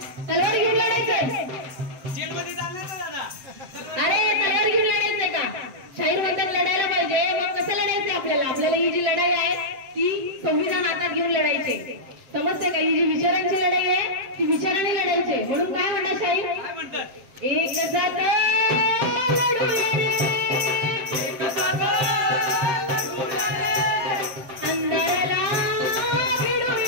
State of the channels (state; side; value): late; left; 7.6 ms